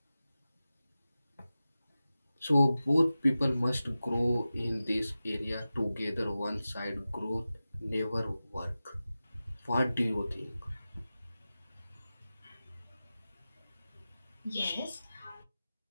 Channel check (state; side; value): inverted; both; correlation -0.95